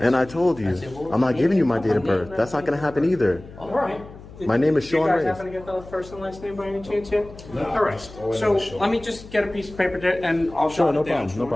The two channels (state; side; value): noise; left; hum, 18 dB below the sound